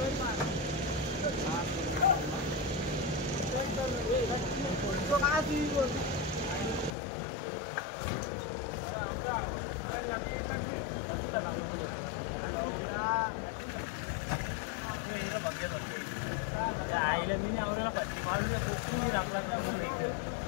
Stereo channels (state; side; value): drops out; right; at 6.9 s